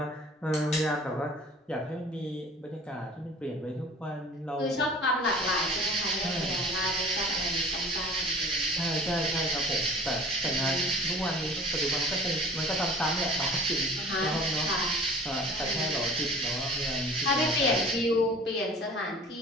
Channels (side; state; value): both; normal; correlation 0.45